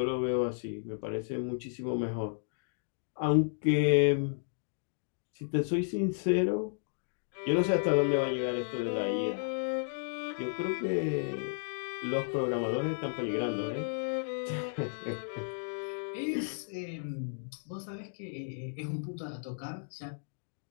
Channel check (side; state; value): right; silent; digital silence